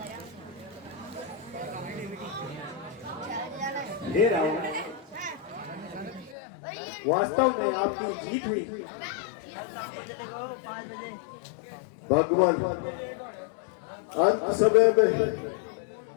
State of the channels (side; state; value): right; drops out; at 6.4 s